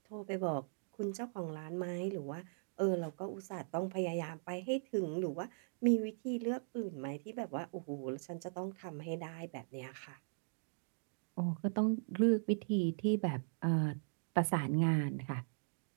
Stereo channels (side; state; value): left; silent; digital silence